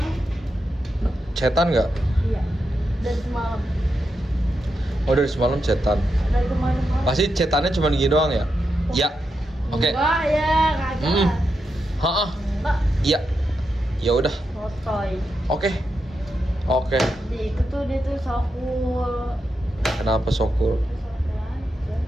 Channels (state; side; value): normal; both; correlation 0.86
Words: Chatan nggak? Iya. Dari semalam. Oh dari semalam chatan. Dari kemarin. Pasti chatannya cuma gini doang ya? Ya. Oke. Enggak ya, kagak. Hah? Enggak, Iya. Ya udah. sotoy. Oke. Oke. Di itu tuh dia tuh sokul. Kenapa Sokul? Sotoy aja.